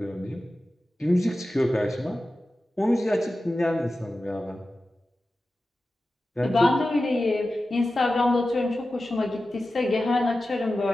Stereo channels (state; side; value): normal; both; correlation 0.94